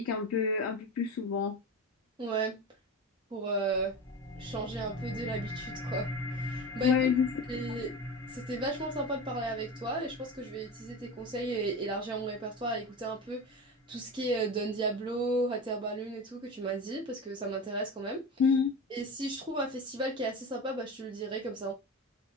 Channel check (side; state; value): both; normal; correlation 0.27